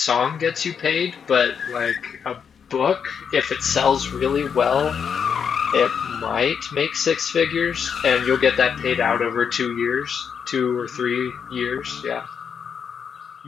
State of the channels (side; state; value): right; quieter; 7.0 dB